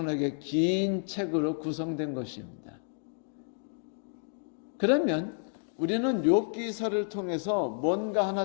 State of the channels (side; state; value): right; silent; 56 dB below the other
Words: 긴 책으로 구성된 것입니다. 그러면 우리는 욥기서를 통해서 뭔가 하나